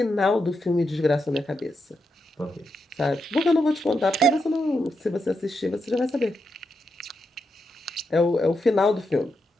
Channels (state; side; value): normal; both; correlation 0.84